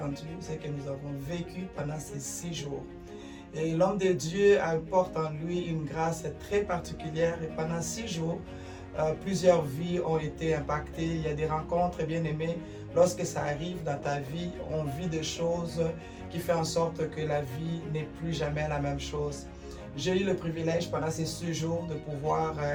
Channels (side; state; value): both; identical; correlation 1.00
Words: ce que nous avons vécu pendant ces 6 jours. Et l'homme de Dieu porte en lui une grâce très particulière et pendant 6 jours, plusieurs vies ont été impactées. Il y a des rencontres bien aimées. Lorsque ça arrive dans ta vie, on vit des choses qui font en sorte que la vie n'est plus jamais la même chose. J'ai eu le privilège pendant ces 6 jours de pouvoir